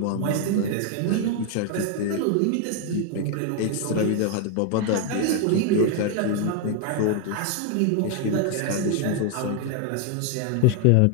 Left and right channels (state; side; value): different; both; correlation 0.01